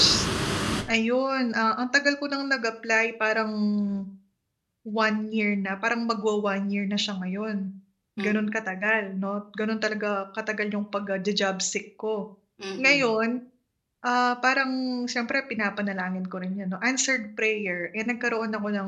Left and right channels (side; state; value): both; identical; correlation 1.00